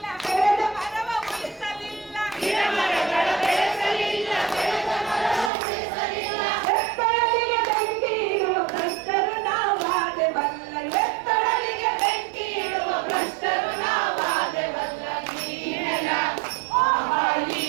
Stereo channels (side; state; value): left; drops out; at 5.5 s